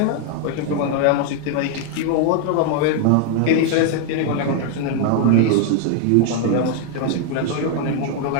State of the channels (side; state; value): both; different; correlation 0.00